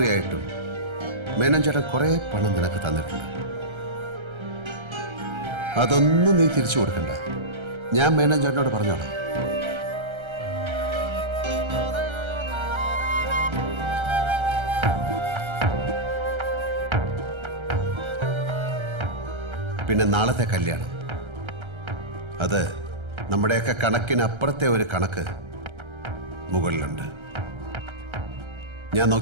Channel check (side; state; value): left; late; 1.3 ms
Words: മേനോജേട്ടൻ കുറെ പണം നിനക്ക് തന്നിട്ടുണ്ട്. അതൊന്നും നീ തിരിച്ചു കൊടുക്കണ്ട. ഞാൻ മേനോജേട്ടനോട് പറഞ്ഞോളാം. പിന്നെ നാളത്തെ കല്യാണം, അത് നമ്മുടെയൊക്കെ കണക്കിനപ്പുറത്തെ ഒരു കണക്ക് മുകളിലുണ്ട്. ഞാൻ